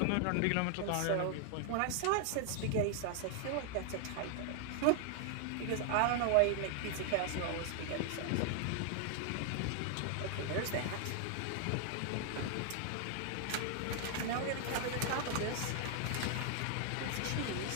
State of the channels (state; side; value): different; both; correlation 0.00